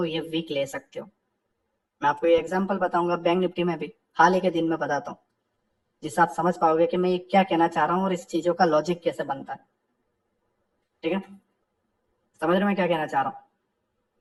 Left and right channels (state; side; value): identical; both; correlation 1.00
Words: ये वीक ले सकते हो। मैं आपको ये एग्जांपल बताऊंगा बैंक निफ्टी में भी, हाल ही के दिन में बताता हूँ, जिससे आप समझ पाओगे कि मैं ये क्या कहना चाह रहा हूँ और इस चीजों का लॉजिक कैसे बनता है, ठीक है। समझ रहे मैं क्या कहना चाह रहा हूँ।